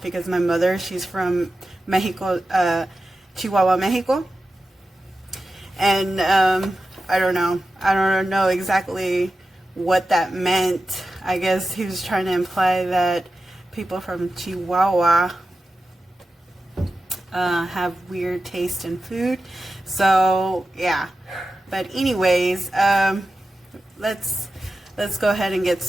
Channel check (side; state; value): both; normal; correlation 0.93